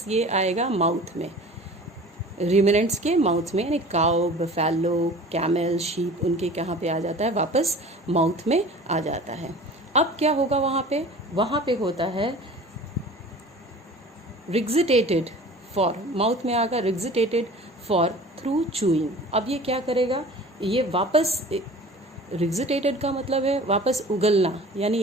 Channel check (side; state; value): both; normal; correlation 0.42